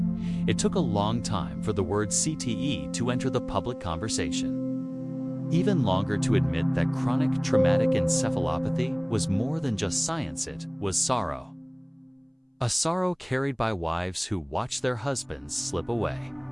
It took a long time for the word CTE to enter the public conversation. Even longer to admit that chronic traumatic encephalopathy was more than just science, it was sorrow. A sorrow carried by wives who watched their husbands slip away,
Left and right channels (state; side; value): identical; both; correlation 1.00